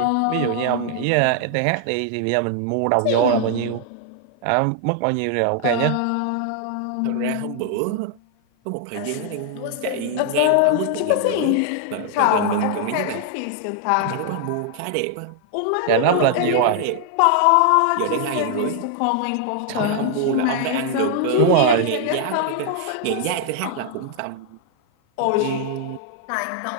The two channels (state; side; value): different; both; correlation 0.00